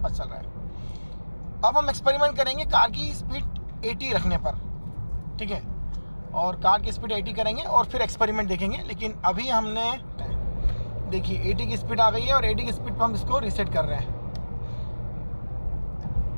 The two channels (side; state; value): both; inverted; correlation -1.00